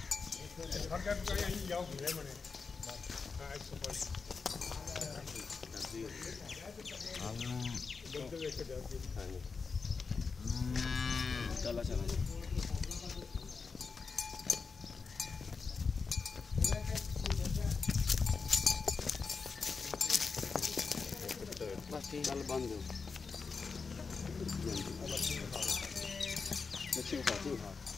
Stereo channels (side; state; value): right; quieter; 4.9 dB